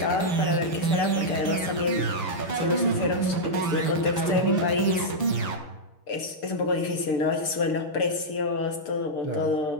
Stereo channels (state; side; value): late; right; 6.8 ms